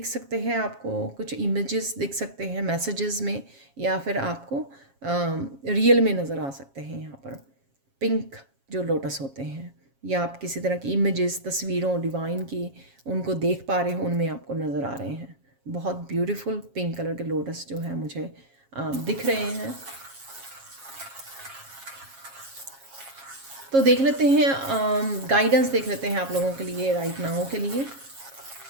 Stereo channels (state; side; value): late; left; 7.3 ms